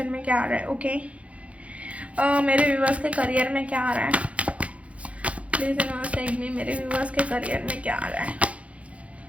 में क्या आ रहा है। ओके, मेरे व्यूवर्स के करियर में क्या आ रहा है। Please universe guide me. मेरे व्यूवर्स के करियर में क्या आ रहा है।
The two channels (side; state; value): left; late; 0.064 ms